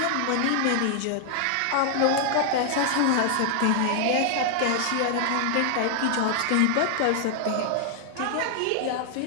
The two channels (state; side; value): different; both; correlation 0.00